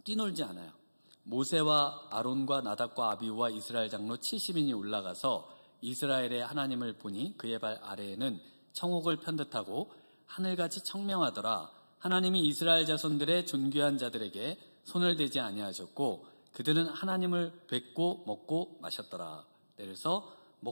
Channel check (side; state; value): both; inverted; correlation -1.00